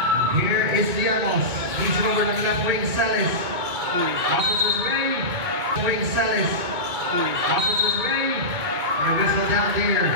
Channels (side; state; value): left; late; 2.2 ms